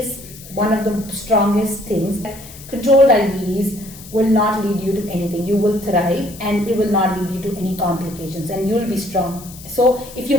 one of the strongest things. Controlled diabetes will not lead you to anything. You will thrive, and it will not lead you to any complications, and you will be strong. So if you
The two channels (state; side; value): noise; left; hiss, 17 dB below the sound